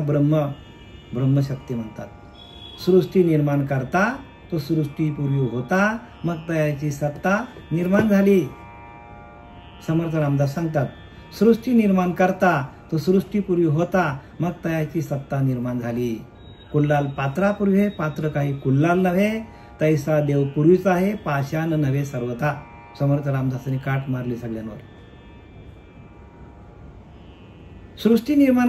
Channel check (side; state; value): both; identical; correlation 1.00